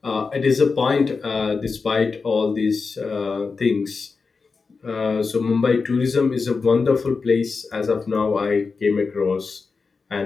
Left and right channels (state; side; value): quieter; right; 4.7 dB